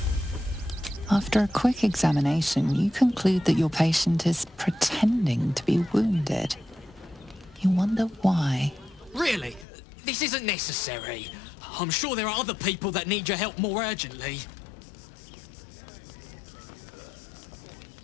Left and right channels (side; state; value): right; drops out; at 9.7 s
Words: After a quick examination, you conclude that your patient is pretending to be wounded. You wonder why. Really? This isn't necessary. I'm sure there are other people that need your help more urgently.